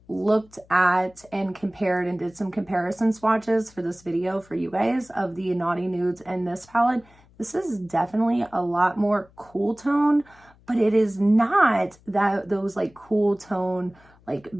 looked at and compared and did some comparison swatches for this video for you guys of the Naughty Nudes and this palette, this is definitely a lot more cool tone, but it is not that those like cool tone, like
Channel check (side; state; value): left; noise; hum, 28 dB below the sound